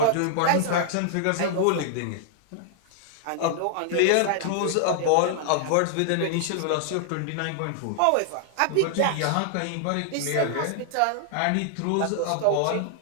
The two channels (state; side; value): different; both; correlation -0.01